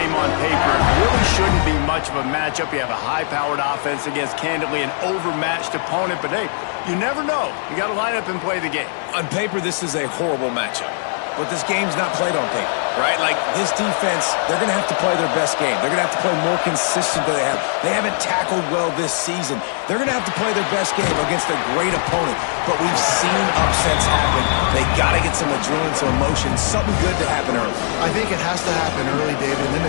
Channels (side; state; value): right; silent; 57 dB below the other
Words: on paper, it really shouldn't be much of a matchup. You have a high-powered offense against, candidly, an overmatched opponent. But, hey, you never know. You got to line up and play the game. On paper, this is a horrible matchup. But this game's not played on paper, right? Like, this defense, they're going to have to play their best game. They're going to have to play more consistent than they have. They haven't tackled well this season. They're going to have to play their best game against a great opponent. But we've seen upsets happen. They got to get some adrenaline, some emotion, something good to happen early. I think it has to happen early, David, and then